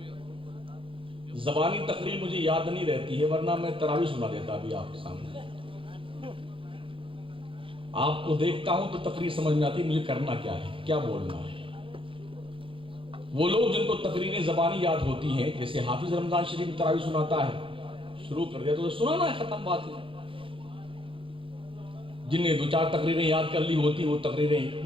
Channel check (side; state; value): left; late; 0.25 ms